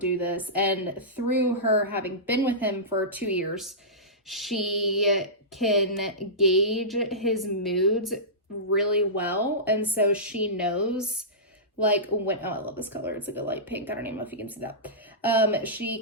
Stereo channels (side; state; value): both; normal; correlation -0.18